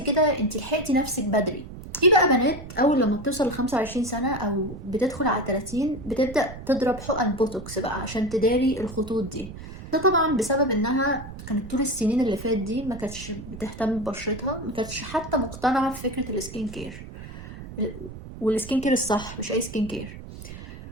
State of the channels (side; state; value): right; noise; rumble, 13 dB below the sound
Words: كده انت لحقتي نفسك بدري. في بقى بنات اول لما بتوصل ل 25 سنة او بتدخل على 30 بتبدأ تضرب حقن بوتوكس بقى عشان تداري الخطوط دي. ده طبعا بسبب انها كانت طول السنين اللي فات دي ما كانتش بتهتم ببشرتها، ما كانتش حتى مقتنعة بفكرة السكين كير، والسكين كير الصح مش اي سكين كير.